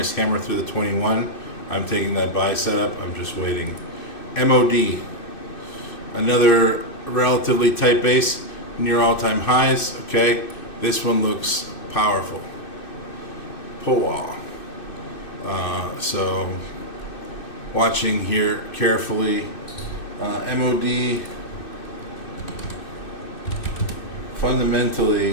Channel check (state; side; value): late; right; 2.6 ms